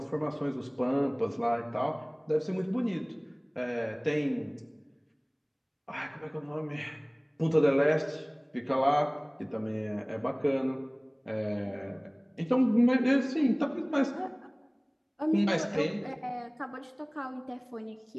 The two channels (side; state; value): both; identical; correlation 1.00